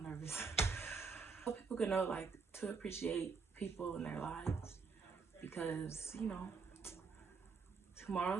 nervous. So people can know, like, to appreciate people in their lives, because you know,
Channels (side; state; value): left; quieter; 5.0 dB